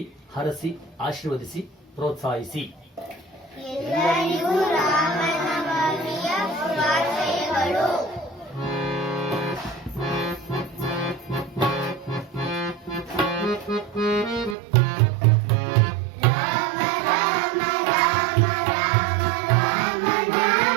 ಹರಸಿ ಆಶೀರ್ವದಿಸಿ ಪ್ರೋತ್ಸಾಹಿಸಿ. ಎಲ್ಲರಿಗೂ ರಾಮನವಮಿಯ ಶುಭಾಶಯಗಳು. ರಾಮ ರಾಮ ರಾಮ ರಾಮ ರಾಮ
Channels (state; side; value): drops out; left; at 14.6 s